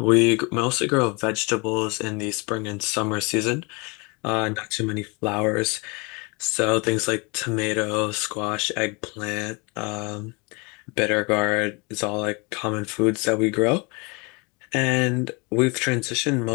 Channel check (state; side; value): quieter; right; 29.4 dB